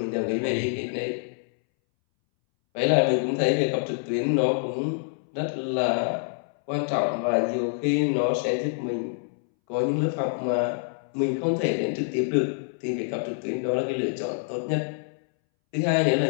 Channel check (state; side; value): silent; right; 61 dB below the other